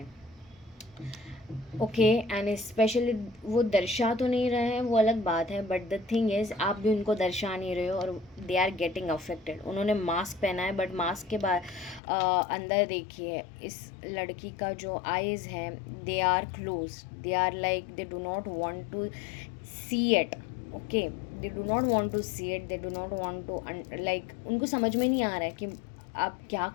ओके एंड स्पेशली वो दर्शा तो नहीं रहे हैं, वो अलग बात है, बट द थिंग इज़ आप भी उनको दर्शा नहीं रहे हो और दे आर गेटिंग अफेक्टेड। उन्होंने मास्क पहना है बट मास्क के बाद अंदर देखिए इस लड़की का जो आईज़ है they are close, they are like they do not want to see it. Okay, they do not want to see it, they do not want to like उनको समझ में नहीं आ रहा है कि आप क्या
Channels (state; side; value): drops out; right; at 12.0 s